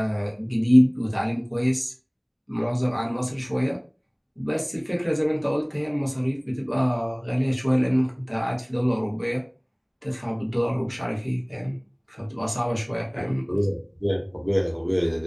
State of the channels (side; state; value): both; identical; correlation 1.00